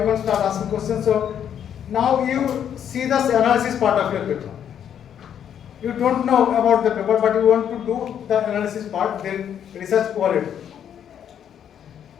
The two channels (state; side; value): quieter; right; 9.1 dB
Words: can start asking questions. So now you see the analysis part of your paper. You don't know about the paper, but you want to do the analysis part, then research quality.